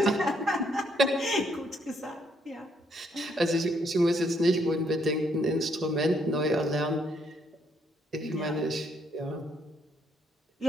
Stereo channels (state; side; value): normal; both; correlation 0.71